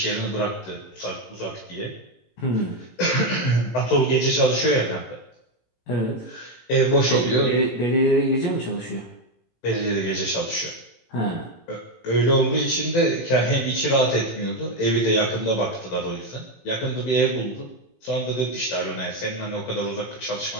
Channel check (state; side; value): late; right; 18 ms